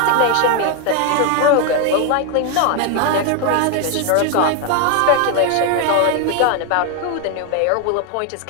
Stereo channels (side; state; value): both; different; correlation 0.01